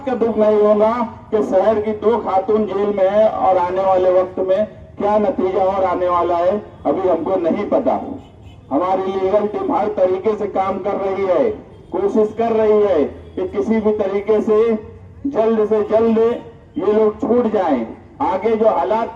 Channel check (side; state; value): both; identical; correlation 1.00